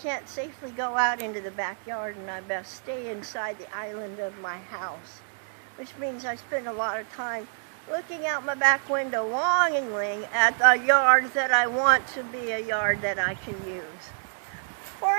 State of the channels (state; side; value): silent; left; digital silence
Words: safely go out into the backyard, and I best stay inside the island of my house, which means I spend a lot of time looking out my back window longingly at the yard that I want to be a yard that I can use. For